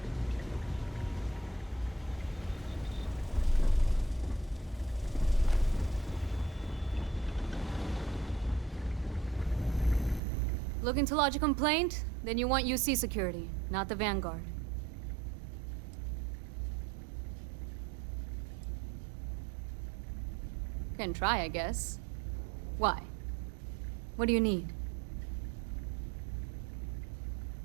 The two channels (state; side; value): drops out; left; at 10.2 s